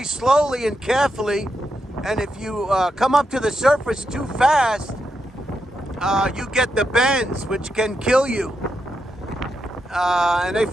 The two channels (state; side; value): normal; both; correlation 0.84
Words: slowly and carefully, and if you come up to the surface too fast, you get the bends, which can kill you. And they